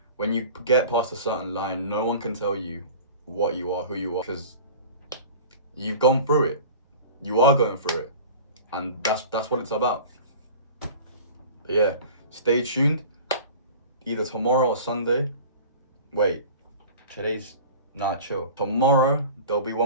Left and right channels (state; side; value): inverted; both; correlation -0.39